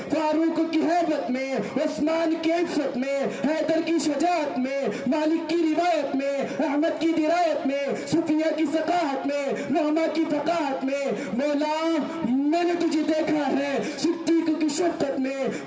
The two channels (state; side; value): identical; both; correlation 1.00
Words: فاروق کی ہیبت میں، عثمان کی عفت میں، حیدر کی شجاعت میں، مالک کی روایت میں، احمد کی درایت میں، صفیہ کی ثقافت میں، نعمہ کی فقاہت میں، مولا میں نے تجھے دیکھا ہے صدیق کی شفقت میں،